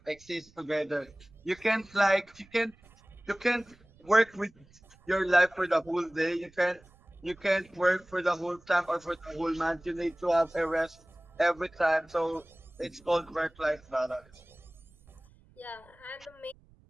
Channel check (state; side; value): noise; right; rumble, 28 dB below the sound